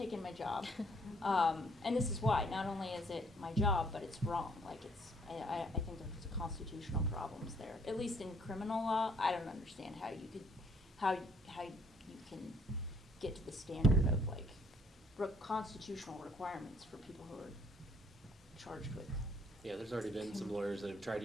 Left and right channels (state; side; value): normal; both; correlation 0.64